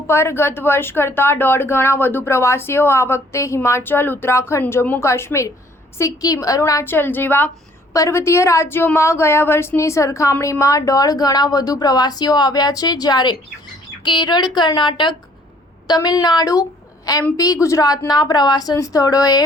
પર ગત વર્ષ કરતાં 1.5 ગણા વધુ પ્રવાસીઓ આ વખતે હિમાચલ, ઉત્તરાખંડ, જમ્મુ કાશ્મીર, સિક્કિમ, અરુણાચલ જેવા પર્વતીય રાજ્યોમાં ગયા વર્ષની સરખામણીમાં 1.5 ગણા વધુ પ્રવાસીઓ આવ્યા છે, જ્યારે કેરળ, કર્ણાટક, તમિલનાડુ, એમપી, ગુજરાતના પ્રવાસન સ્થળોએ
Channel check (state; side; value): normal; both; correlation 0.60